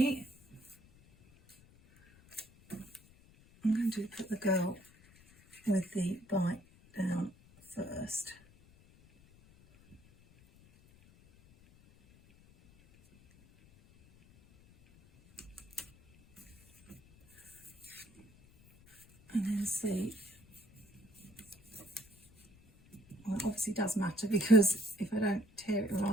I'm going to put the girl with the bite down first. And then see, well, it obviously does matter, because if I don't tear it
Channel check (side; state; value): left; noise; rumble, 26 dB below the sound